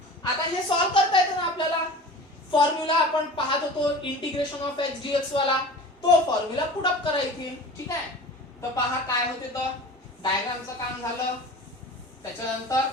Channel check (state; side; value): normal; both; correlation 0.37